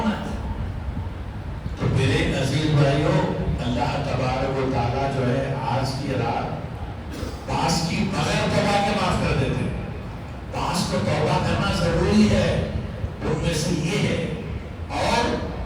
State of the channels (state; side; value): identical; both; correlation 1.00